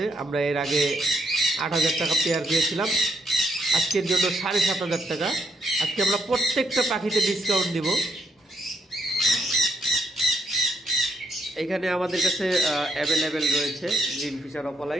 আমরা এর আগে 8,000 টাকা পেয়ার দিয়েছিলাম, আজকের জন্য 7,500 টাকা। আজকে আমরা প্রত্যেকটা পাখিতে ডিসকাউন্ট দিব। এখানে আমাদের কাছে অ্যাভেলেবেল রয়েছে গ্রিন ফিশার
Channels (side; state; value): both; normal; correlation 0.74